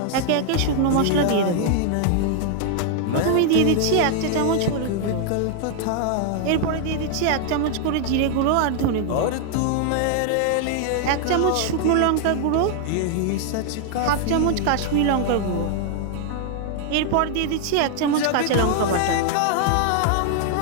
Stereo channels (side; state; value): both; different; correlation 0.00